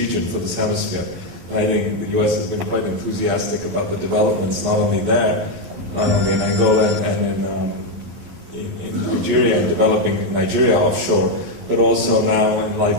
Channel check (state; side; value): late; left; 12 ms